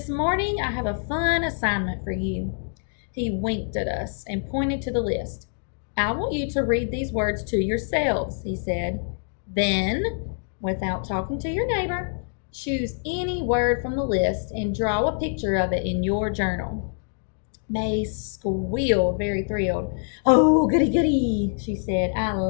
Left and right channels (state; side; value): silent; right; digital silence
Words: morning I have a fun assignment for you. He winked at us and pointed to the list. I want you to read these words to yourselves, he said. Then, without talking to your neighbor, choose any word from the list and draw a picture of it in your journal. May squealed, very thrilled. Oh, goody, goody, she said. I